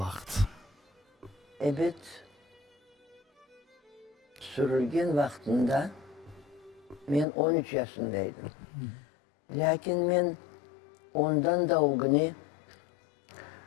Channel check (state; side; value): drops out; right; at 7.2 s